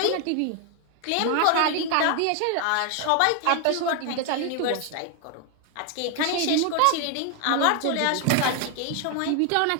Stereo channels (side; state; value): both; different; correlation 0.00